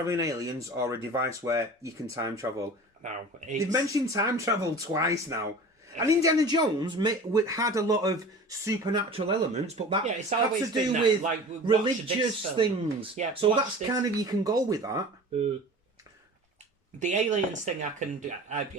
aliens or a device where you can time travel. No, they've mentioned time travel twice now. And Indiana Jones had a lot of supernatural elements, but that had to do with religious things. Yeah, so that's kind of, you can go with that. The aliens thing,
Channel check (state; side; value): normal; both; correlation 0.38